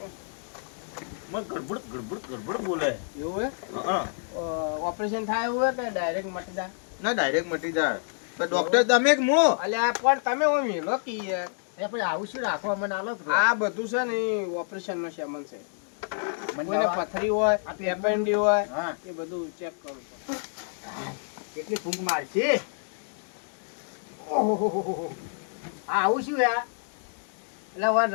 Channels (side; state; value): right; silent; digital silence